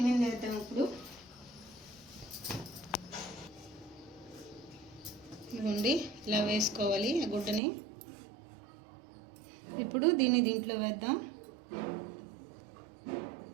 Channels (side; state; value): left; drops out; at 7.6 s